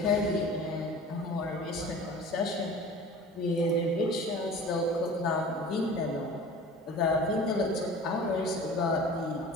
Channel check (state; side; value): normal; both; correlation 0.41